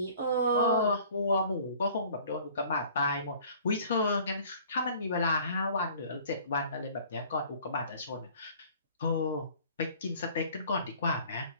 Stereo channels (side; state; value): both; inverted; correlation -0.51